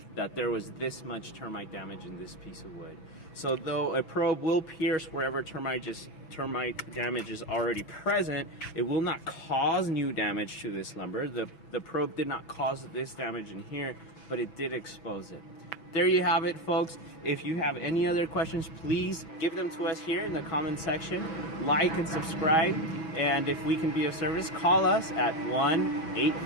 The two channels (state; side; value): late; right; 6.0 ms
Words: that there was this much termite damage in this piece of wood. So though a probe will pierce wherever termite damage is already present, it will not cause new damage to this lumber. The probe did not cause this damage in here, but it did expose it. There you have it, folks. If you have any other questions, please give them to us here in the comment section. Like and subscribe. And if we can be of service, call us at